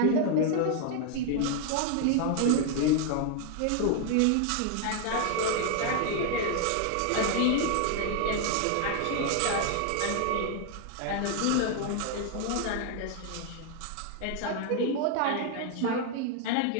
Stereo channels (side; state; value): both; different; correlation 0.00